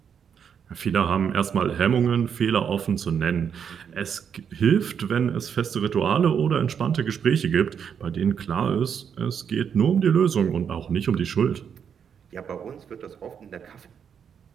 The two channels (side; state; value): left; quieter; 7.5 dB